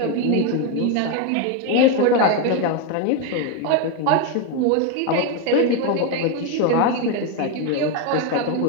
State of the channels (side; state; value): both; different; correlation 0.02